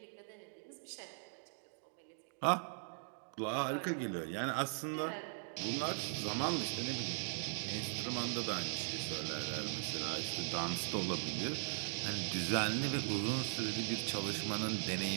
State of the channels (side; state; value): left; silent; digital silence